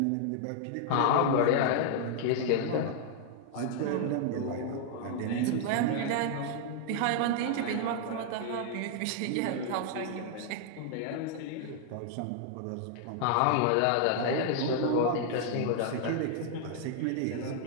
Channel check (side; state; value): both; different; correlation 0.00